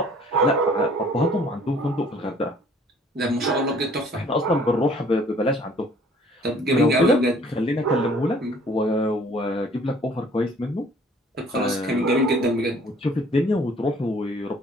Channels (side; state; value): both; normal; correlation 0.56